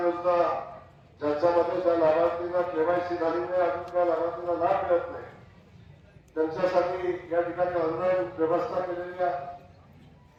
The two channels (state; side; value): identical; both; correlation 1.00